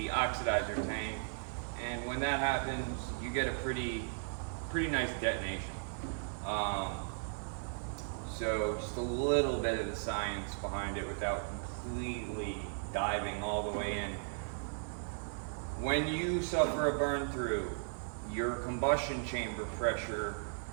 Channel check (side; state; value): left; silent; digital silence